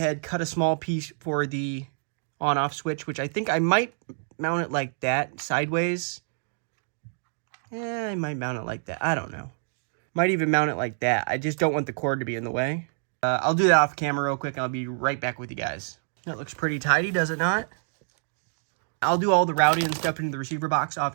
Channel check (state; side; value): silent; left; digital silence